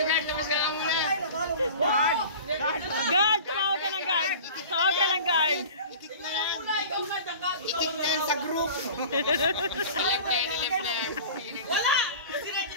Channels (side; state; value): both; inverted; correlation -0.39